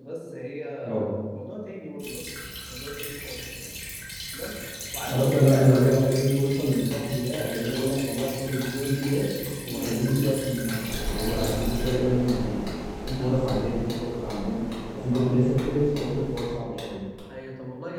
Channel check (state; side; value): identical; both; correlation 1.00